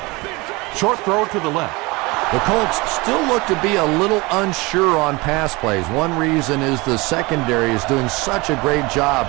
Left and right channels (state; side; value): quieter; left; 24.2 dB